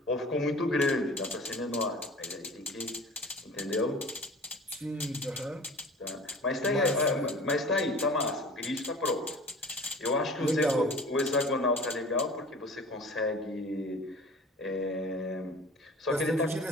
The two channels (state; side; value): normal; both; correlation 0.42